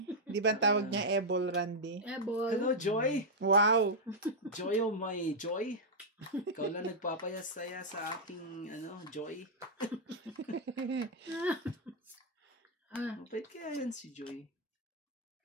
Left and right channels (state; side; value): normal; both; correlation -0.03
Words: Di ba tawag niya Ebol Randy? Eh, boy. Hello, Joy! Wow! Joy, oh my Joy! Ikaw lang nagpapayas-saya sa aking, Joy. Mapait kaya yan si Joy.